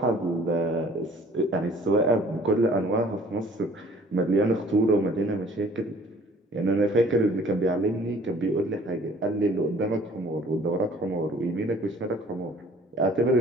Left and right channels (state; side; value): normal; both; correlation 0.53